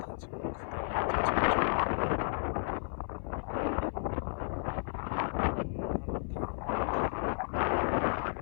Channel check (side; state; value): right; silent; 56 dB below the other